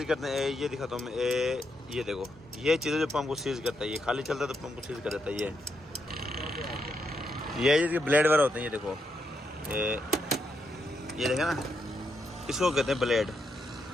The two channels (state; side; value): normal; both; correlation 0.80